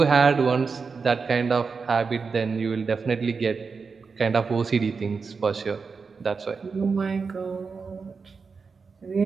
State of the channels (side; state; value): left; quieter; 5.0 dB